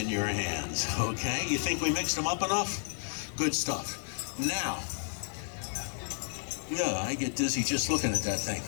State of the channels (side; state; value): right; silent; 57 dB below the other